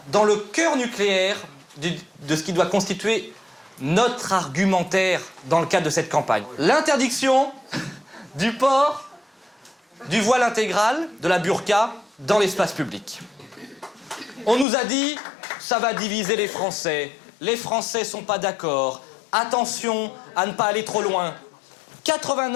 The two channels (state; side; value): drops out; right; at 14.7 s